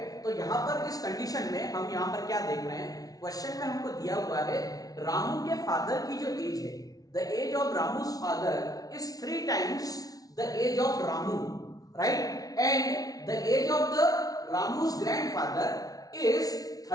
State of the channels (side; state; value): right; late; 0.18 ms